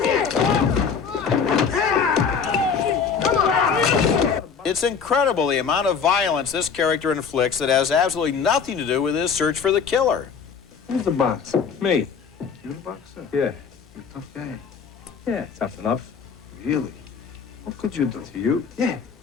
It's incredible the amount of violence this character inflicts that has absolutely nothing to do with his search for the killer. Who's the boxer? Me. You the boxer? Yeah. You're a tough guy. Yeah, tough enough. Really? What could you do? To you? Yeah.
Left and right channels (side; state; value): right; quieter; 6.2 dB